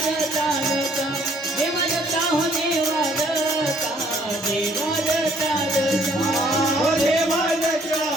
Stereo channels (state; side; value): normal; both; correlation 0.63